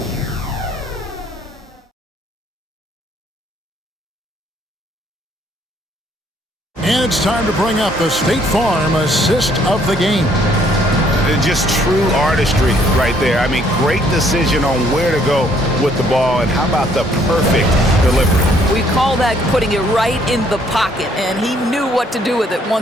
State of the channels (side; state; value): both; normal; correlation 0.65